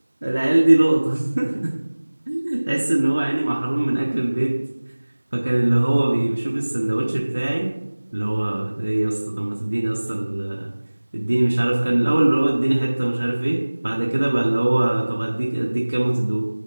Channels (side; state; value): both; inverted; correlation -1.00